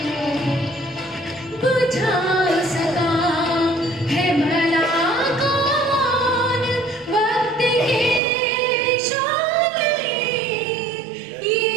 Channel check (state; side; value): drops out; left; at 8.2 s